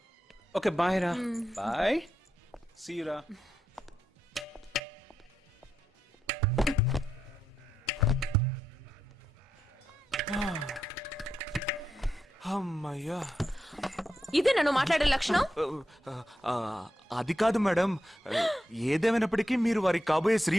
Okay, bye రా. Bye. See you రా. అమ్మయ్యా. ఇదే నన్ను మాట్లాడే లక్షణం? అది కాదు మేడం, ఏదేమైనప్పటికీ మీరు వారి కాబోయే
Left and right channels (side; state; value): both; normal; correlation 0.85